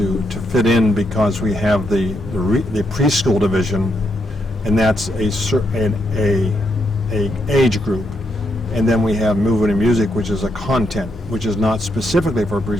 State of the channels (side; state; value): both; normal; correlation 0.79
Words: fit in because we have the preschool division, and that's a age group, and then we have movement and music, which is a content, which is not specifically for